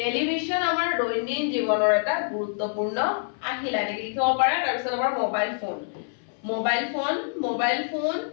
আমাৰ দৈনিক জীৱনৰ এটা গুৰুত্বপূৰ্ণ আহিলা এনেকৈ লিখিব পাৰা। তাৰপিছত আমাৰ মোবাইল ফোন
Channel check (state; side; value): silent; right; 58 dB below the other